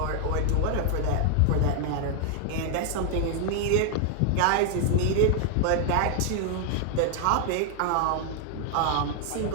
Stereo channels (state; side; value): different; both; correlation 0.00